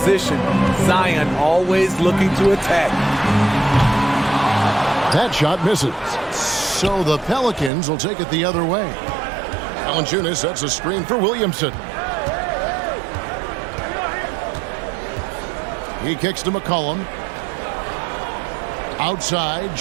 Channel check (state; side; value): drops out; left; at 7.7 s